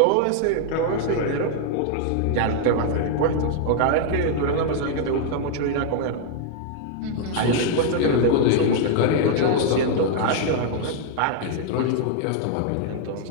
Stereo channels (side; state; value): both; different; correlation 0.00